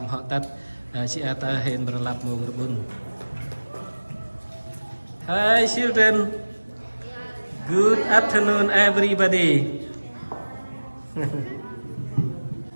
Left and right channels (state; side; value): inverted; both; correlation -1.00